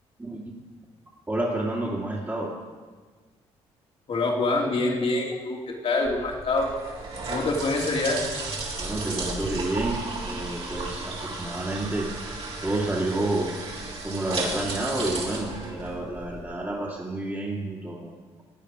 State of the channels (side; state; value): both; normal; correlation 0.61